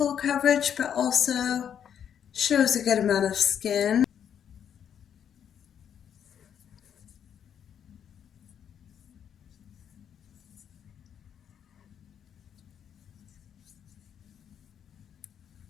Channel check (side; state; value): right; quieter; 8.7 dB